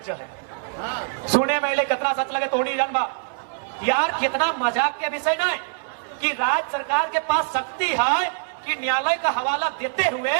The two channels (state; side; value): silent; left; 63 dB below the other